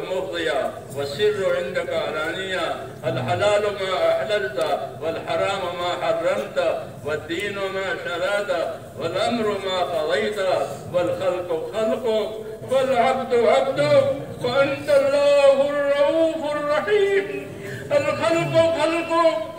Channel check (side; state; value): both; identical; correlation 1.00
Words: مفضية والسر عندك علانية. الحلال ما أحللت والحرام ما حرمت والدين ما شرعت والأمر ما قضيت والخلق خلقك والعبد عبدك وأنت الله الرؤوف الرحيم. الخلق خلقك